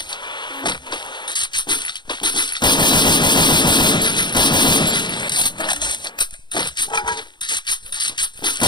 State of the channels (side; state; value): right; late; 0.22 ms